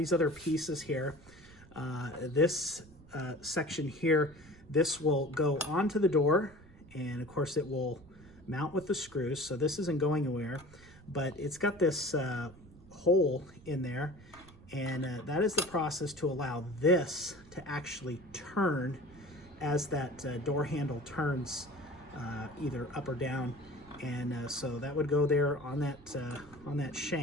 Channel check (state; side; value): noise; right; rumble, 22 dB below the sound